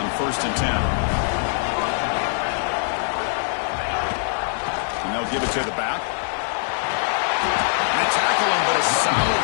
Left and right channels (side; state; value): right; silent; 61 dB below the other